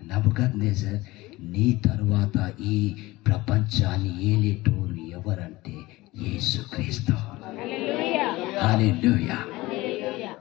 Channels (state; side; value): quieter; right; 19.8 dB